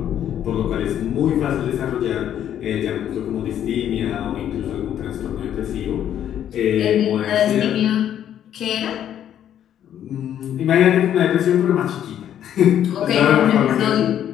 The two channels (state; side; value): quieter; right; 10.3 dB